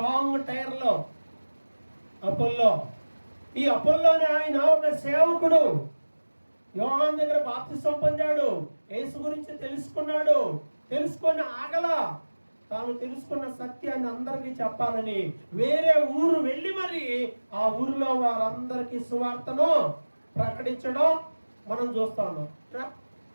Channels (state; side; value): inverted; both; correlation -1.00